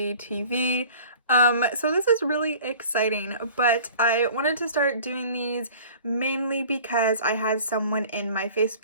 So this is really exciting, but I wanted to start doing these mainly because I had someone in my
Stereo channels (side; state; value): both; inverted; correlation -0.45